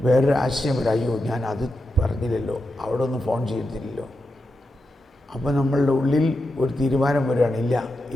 വേറൊരു ആശയം വരും. അയ്യോ, ഞാൻ അത് പറഞ്ഞില്ലല്ലോ, അവിടെ ഒന്ന് ഫോൺ ചെയ്തില്ലല്ലോ. അപ്പോൾ നമ്മളുടെ ഉള്ളിൽ ഒരു തീരുമാനം വരികയാണ്, ഇല്ല,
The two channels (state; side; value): normal; both; correlation 0.88